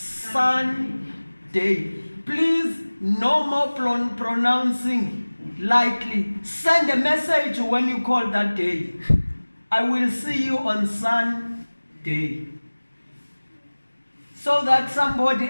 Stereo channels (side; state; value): both; inverted; correlation -1.00